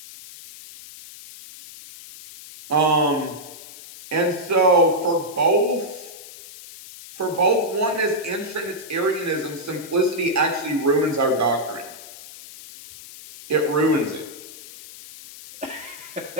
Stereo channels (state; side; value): noise; left; hiss, 16 dB below the sound